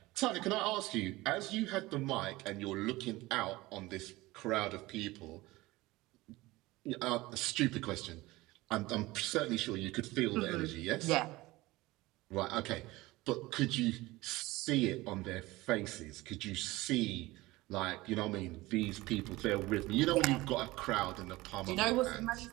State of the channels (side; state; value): left; quieter; 19.8 dB